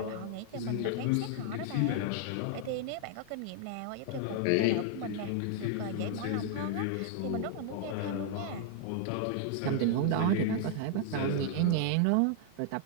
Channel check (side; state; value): both; different; correlation 0.00